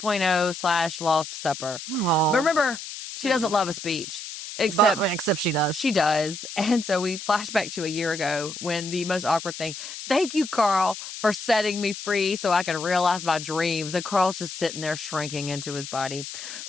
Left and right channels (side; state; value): left; noise; hiss, 10 dB below the sound